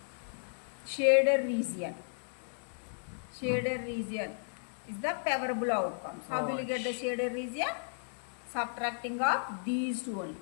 Shaded region. Shaded region is the favorable outcomes. How will you get the shaded region? Subtracting of these two only.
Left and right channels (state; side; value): silent; right; digital silence